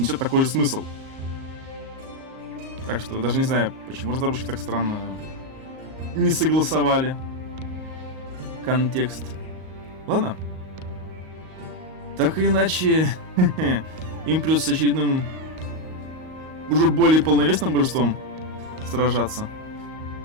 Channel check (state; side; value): late; left; 38 ms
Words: несет такой же смысл. Так что даже не знаю, почему разработчики так странно не согласовали контекст. Ладно. Так или иначе, им придется с очередным, уже более полновесным божеством сражаться.